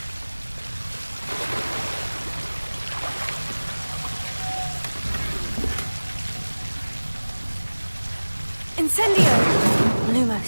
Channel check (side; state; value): both; inverted; correlation -1.00